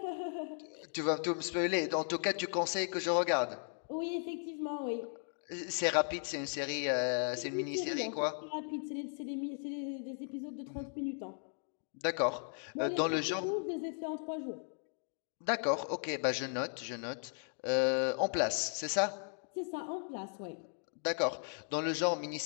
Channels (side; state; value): right; silent; 53 dB below the other